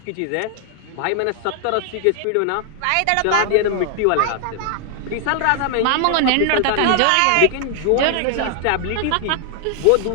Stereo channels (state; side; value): different; both; correlation 0.00